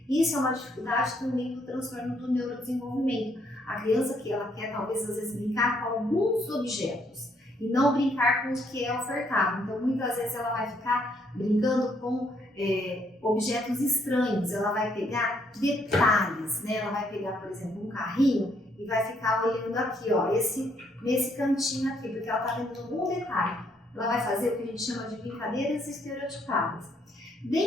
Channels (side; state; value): both; normal; correlation 0.70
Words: Isso é uma dificuldade também do transtorno do neurodesenvolvimento. A criança que ela quer talvez às vezes brincar com alguns objetos e não brincar com o que é ofertado. Então muitas vezes ela vai ficar brincando com objetos estranhos, ela vai pegar detalhes, né? Ela vai pegar, por exemplo, um carrinho e vai ficar olhando aqui, ó, nesse cantinho aqui, porque ela está vendo algum detalhe. Ela vai fazer o que a gente chama de brincadeiras estereotipadas.